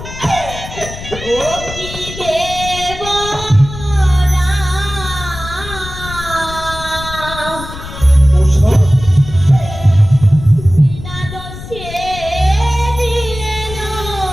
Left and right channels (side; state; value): left; noise; rumble, 12 dB below the sound